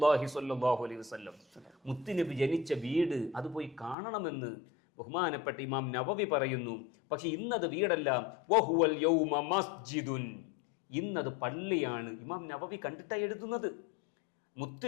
സ്വല്ലല്ലാഹു അലൈഹി വസല്ലം. മുത്തുനബി ജനിച്ച വീട്, അത് പോയി കാണണമെന്ന് ബഹുമാനപ്പെട്ട ഇമാം നവവി പറയുന്നു. പക്ഷെ ഇന്നത് വീടല്ല. വഹുവൽ യൗമ മസ്ജിദുൻ. ഇന്നത് പള്ളിയാണ്. ഇമാം നവവി കണ്ടിട്ടാണ് എഴുതുന്നത്.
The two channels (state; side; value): drops out; right; at 4.0 s